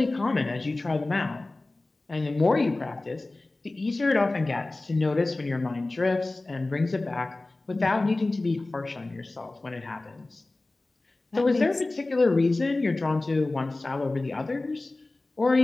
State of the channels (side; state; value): right; quieter; 3.0 dB